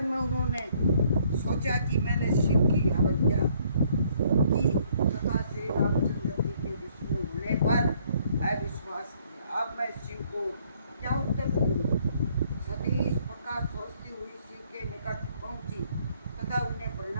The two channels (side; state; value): both; inverted; correlation -0.65